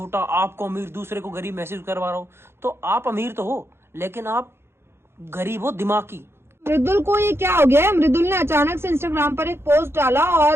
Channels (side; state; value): left; late; 0.12 ms